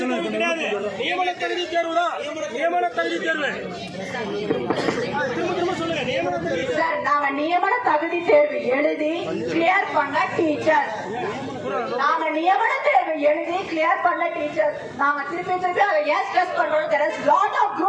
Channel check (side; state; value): both; identical; correlation 1.00